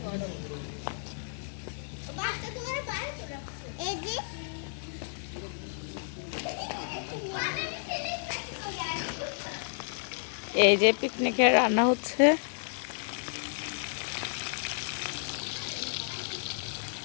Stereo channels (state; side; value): silent; right; digital silence